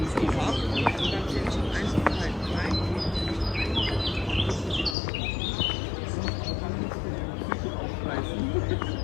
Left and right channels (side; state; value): right; drops out; at 5.0 s